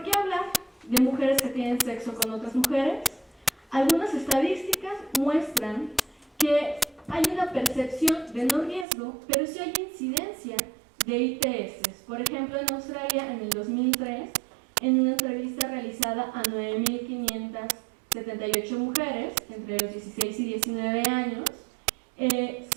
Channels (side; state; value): left; drops out; at 8.8 s